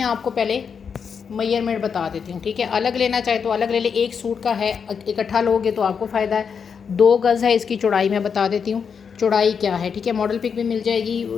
आपको पहले मेजरमेंट बता देती हूँ, ठीक है। अलग लेना चाहे तो अलग ले ले, एक सूट का है, इकट्ठा लोगे तो आपको फ़ायदा है। 2 गज़ है इसकी चौड़ाई, मैं बता देती हूँ चौड़ाई क्या है, ठीक है। मॉडल पिक भी मिल जाएगी,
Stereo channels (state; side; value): quieter; right; 6.4 dB